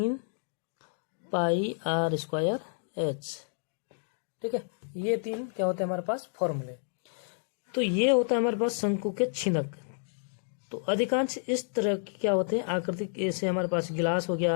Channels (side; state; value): right; silent; digital silence